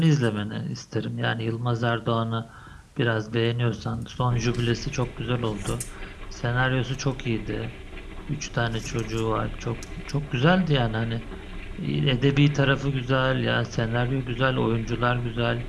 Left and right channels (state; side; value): identical; both; correlation 1.00